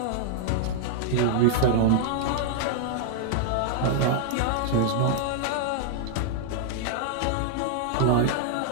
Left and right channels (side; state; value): both; different; correlation -0.01